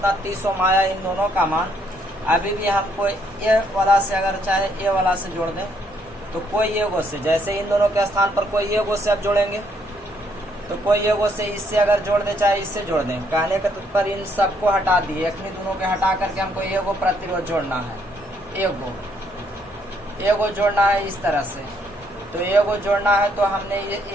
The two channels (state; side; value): normal; both; correlation 0.70